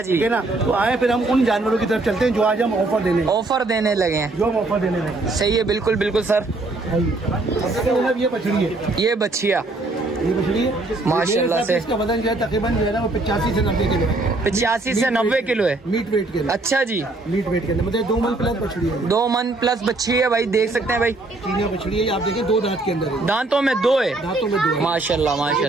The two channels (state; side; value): quieter; left; 3.0 dB